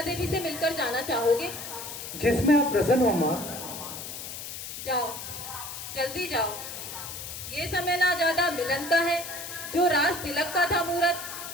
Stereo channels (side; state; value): left; noise; hiss, 9 dB below the sound